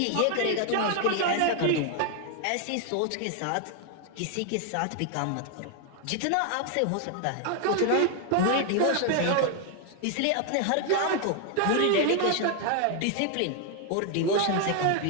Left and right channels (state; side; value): different; both; correlation 0.00